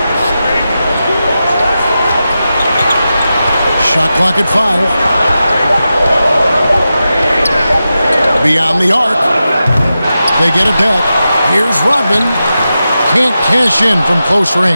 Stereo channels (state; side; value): inverted; both; correlation -0.91